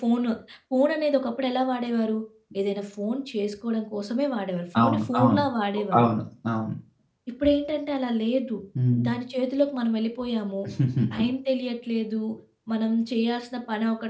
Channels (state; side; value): identical; both; correlation 1.00